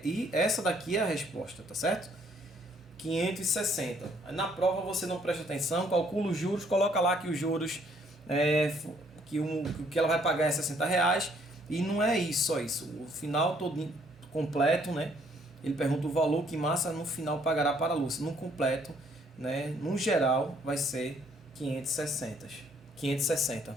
E essa daqui é a resposta, tá certo? 560. Na prova você não presta atenção, calcula os juros, coloca lá que os juros, que ela vai pagar é R$60. E não é isso, só isso. O final todo completo, né? Ele pergunta o valor que Márcia no final pagará para a Lúcia. No completo, né? No geral, vai ser 560.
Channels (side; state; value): both; normal; correlation 0.65